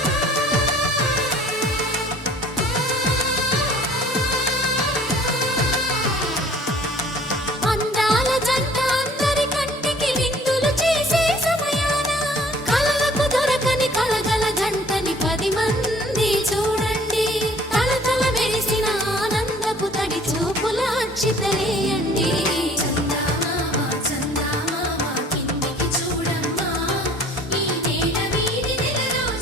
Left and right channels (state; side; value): normal; both; correlation 0.53